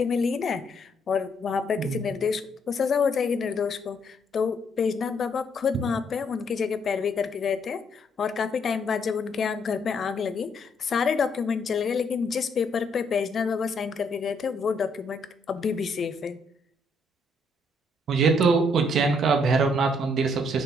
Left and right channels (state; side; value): normal; both; correlation 0.71